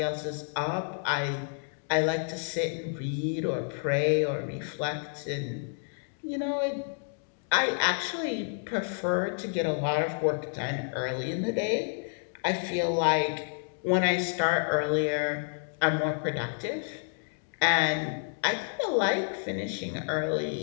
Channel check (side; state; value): right; silent; 58 dB below the other